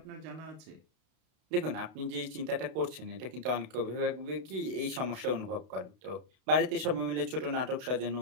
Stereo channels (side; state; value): left; late; 32 ms